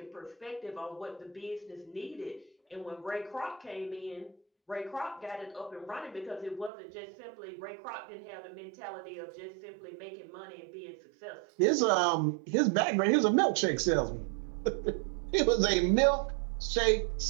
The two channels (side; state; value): left; drops out; at 6.7 s